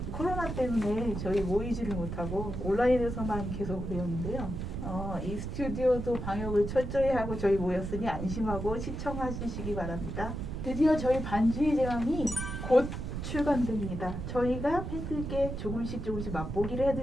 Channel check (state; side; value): noise; right; rumble, 5 dB below the sound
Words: 코로나 때문에 저희 모이지를 못하고 온라인에서만 계속 배웠는데요. 이 스튜디오도 방역을 철저히 하고 저희 모였으니 안심하고 시청하시기 바랍니다. 드디어 저희 반주의 제왕이 곧 출간됩니다. 저희가 팬들께 조금씩 맛보기를